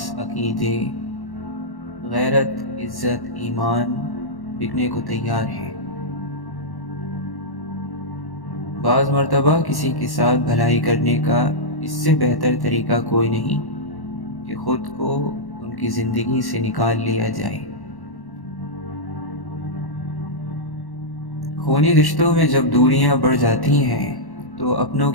عقیدے، غیرت، عزت، ایمان بکنے کو تیار ہے۔ بعض مرتبہ کسی کے ساتھ بھلائی کرنے کا اس سے بہتر طریقہ کوئی نہیں کہ خود کو ان کی زندگی سے نکال لیا جائے۔ خونی رشتوں میں جب دوریاں بڑھ جاتی ہیں تو اپنوں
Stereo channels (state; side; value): late; right; 1.1 ms